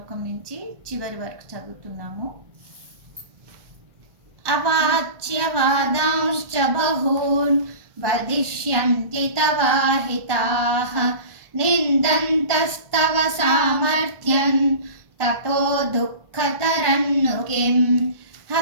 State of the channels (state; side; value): late; left; 1.2 ms